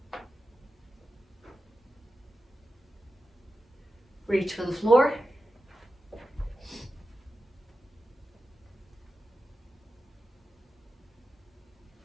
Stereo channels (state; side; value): normal; both; correlation 0.92